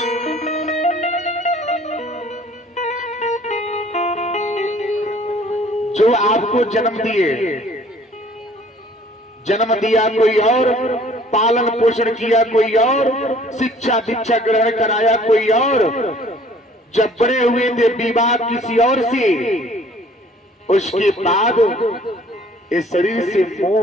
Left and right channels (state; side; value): normal; both; correlation 0.55